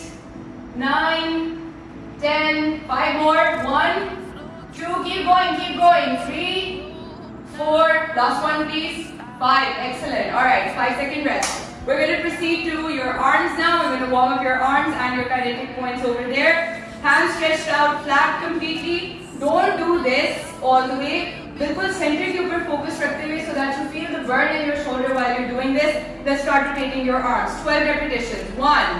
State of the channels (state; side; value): identical; both; correlation 1.00